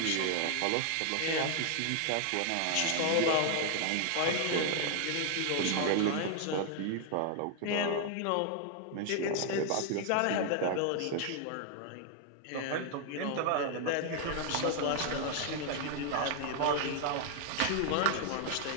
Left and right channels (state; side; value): different; both; correlation 0.00